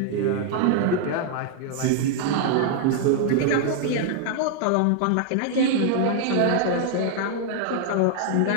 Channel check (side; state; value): both; different; correlation 0.00